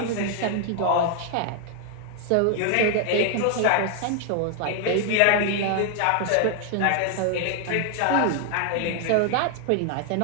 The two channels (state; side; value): different; both; correlation 0.00